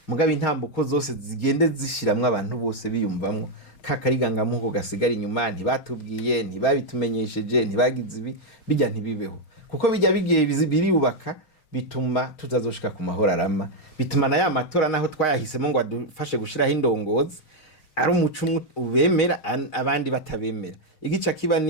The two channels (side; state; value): right; late; 6.4 ms